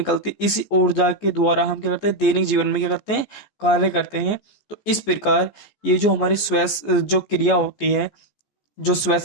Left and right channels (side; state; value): right; late; 14 ms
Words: है, इसी ऊर्जा के द्वारा हम क्या करते हैं, दैनिक जीवन में क्या करते हैं, कार्य करते हैं। तो इस प्रकार ये जो हमारी श्वास जो क्रिया होती है, जो